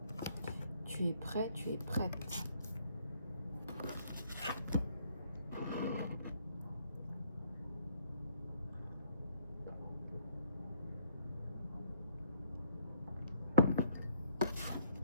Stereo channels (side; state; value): both; inverted; correlation -0.67